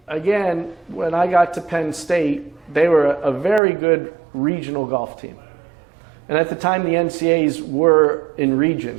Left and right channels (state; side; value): drops out; left; at 3.6 s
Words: got to Penn State, they were a very good regional golf team. And at the time, the NCAAs were in